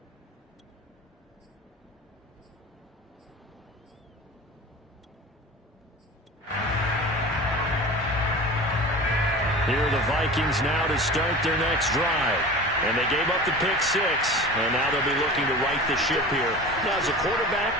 Here are the Vikings now to start their next drive. And they gave up the pick six, and now they'll be looking to right the ship here. Now, as a quarterback,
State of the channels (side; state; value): both; normal; correlation 0.35